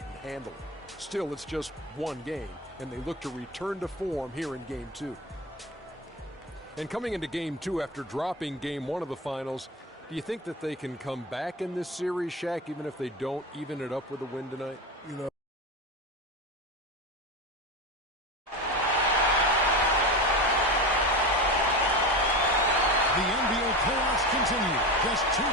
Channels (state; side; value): normal; both; correlation 0.24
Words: Still, it's just one game, and they look to return to form here in Game 2. And coming into Game 2 after dropping Game 1 of the Finals, do you think that they can come back in this series, Shaq, even if they don't even it up with a win tonight? You know, the NBA playoffs continue. Just two